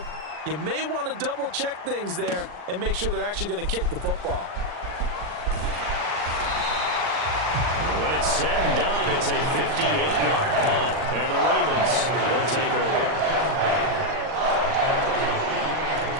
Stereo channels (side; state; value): left; late; 39 ms